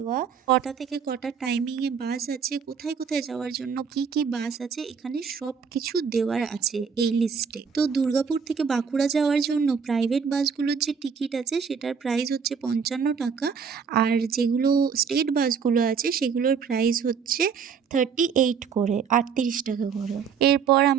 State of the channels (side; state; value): left; quieter; 6.4 dB